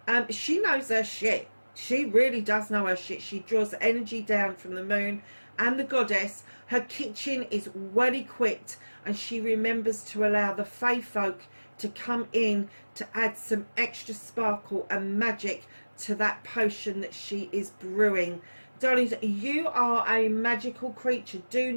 She knows her shit. She really does know her shit. She draws energy down from the moon and the goddess. Her kitchen is well equipped and she remembers to allow the fae folk to come in to add some extra sparkle and magic to that potion that she is brewing. Darlings, you are a magical creature. Do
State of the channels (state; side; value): inverted; both; correlation -1.00